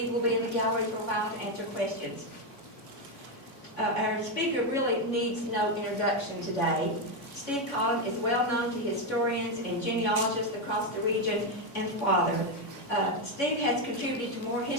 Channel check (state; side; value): late; right; 3.5 ms